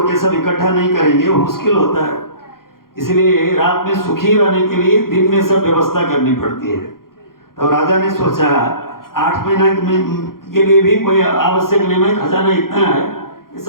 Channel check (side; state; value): right; late; 0.92 ms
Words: के सब इकट्ठा नहीं करेंगे वो मुश्किल होता है। इसलिए रात में सुखी रहने के लिए दिन में सब व्यवस्था करनी पड़ती है। तो राजा ने सोचा, 8 महीना के लिए भी कोई आवश्यक नहीं है, खजाना इतना है, ये